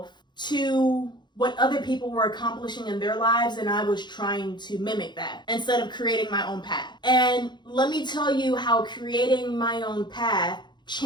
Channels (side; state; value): right; late; 0.21 ms